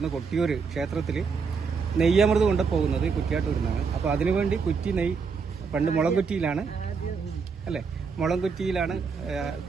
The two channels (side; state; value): left; quieter; 5.4 dB